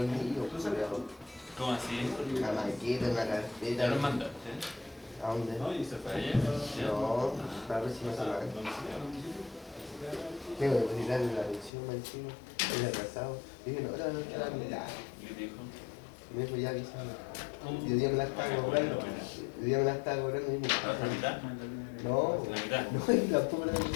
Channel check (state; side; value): drops out; right; at 11.7 s